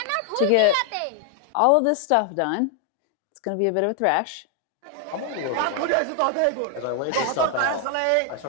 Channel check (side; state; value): both; different; correlation 0.00